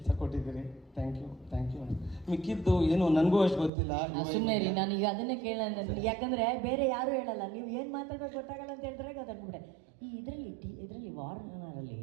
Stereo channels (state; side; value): drops out; left; at 3.7 s